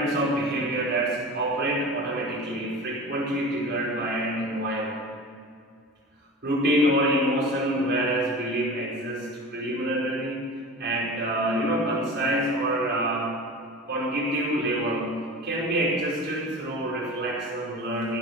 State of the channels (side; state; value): both; normal; correlation 0.34